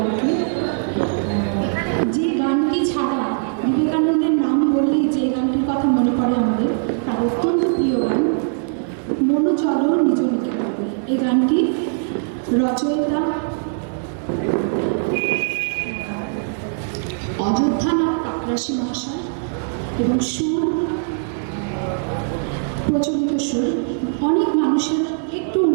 আর কি। যে গানটি ছাড়া বিবেকানন্দের নাম বললেই যে গানটির কথা মনে পড়ে আমাদের, তার অত্যন্ত প্রিয় গান মনো চলো নিজ নিকেতনে। এই গানটি রচয়িতা অযোধ্যানাথ কাকরাশি মহাশয় এবং সুর প্রচলিত সুর, অনেক মানুষের একটু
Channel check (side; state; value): left; silent; digital silence